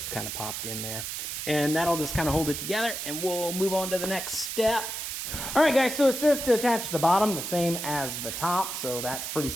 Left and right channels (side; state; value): right; noise; hiss, 5 dB below the sound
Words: kind of popped in there. And that'll just kind of hold it together, and we'll move on to the next step. All right, guys, so it says to attach the bottom the same as the top, so that's pretty